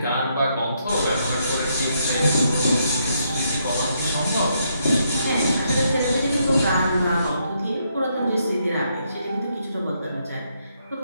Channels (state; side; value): inverted; both; correlation -0.76